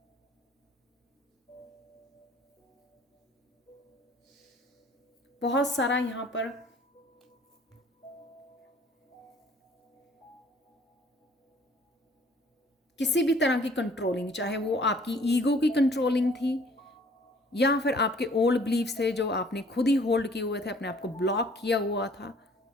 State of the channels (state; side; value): normal; both; correlation 0.56